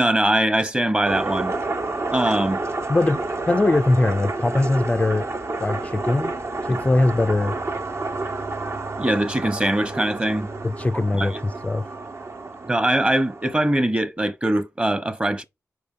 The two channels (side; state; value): both; normal; correlation 0.91